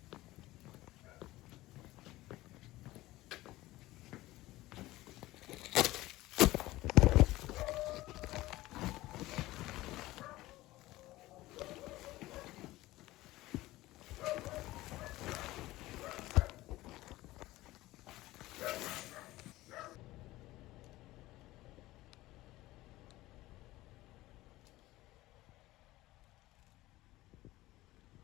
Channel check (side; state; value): right; quieter; 17.8 dB